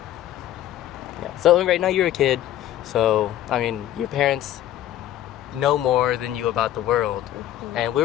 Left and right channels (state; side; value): quieter; right; 12.6 dB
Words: Yeah. So right now you're a kid. So, I mean, your parents know more than you about the world. And